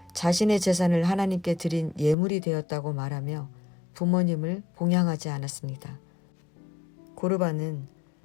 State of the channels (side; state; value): right; drops out; at 2.1 s